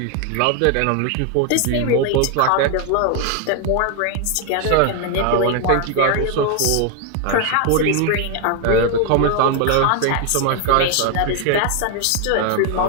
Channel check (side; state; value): both; different; correlation 0.01